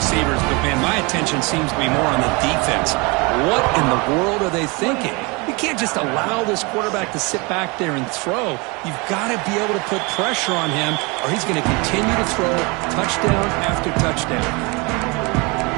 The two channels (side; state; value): left; quieter; 28.0 dB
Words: But, man, my attention seems to be more on the defense. What in the world are they thinking? You can't just allow this quarterback to sit back there and throw. You've got to be able to put pressure on him, or he's going to continue to throw touchdown after touchdown.